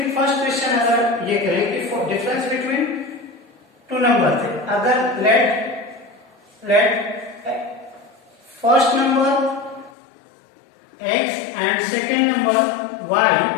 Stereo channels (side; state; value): right; drops out; at 9.9 s